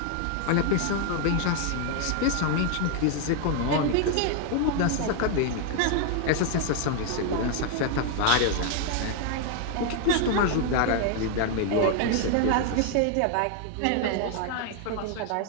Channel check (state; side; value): different; both; correlation 0.00